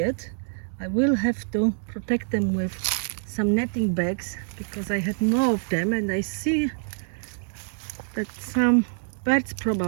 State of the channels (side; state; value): left; silent; digital silence